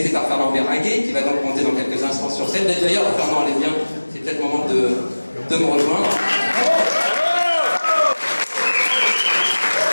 par Fernand Béringuet, qui va donc monter dans quelques instants sur scène. D'ailleurs, Fernand, allez bien, c'est peut-être le moment de me rejoindre.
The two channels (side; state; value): both; inverted; correlation -1.00